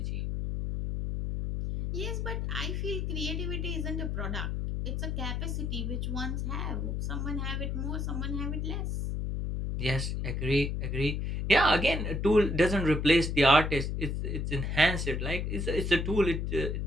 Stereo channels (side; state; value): left; noise; hum, 1 dB below the sound